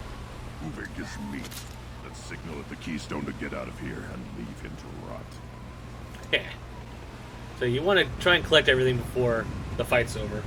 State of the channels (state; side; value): identical; both; correlation 1.00